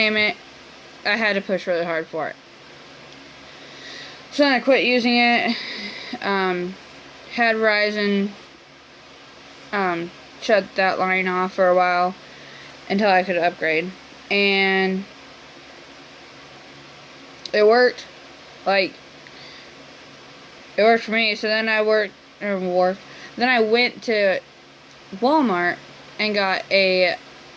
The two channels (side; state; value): both; identical; correlation 1.00